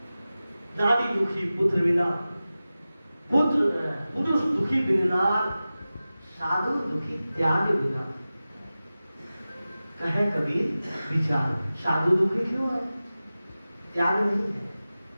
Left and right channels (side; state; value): both; inverted; correlation -0.96